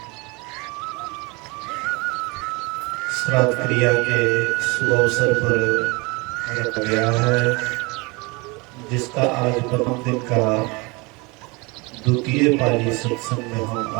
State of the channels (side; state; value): left; quieter; 26.9 dB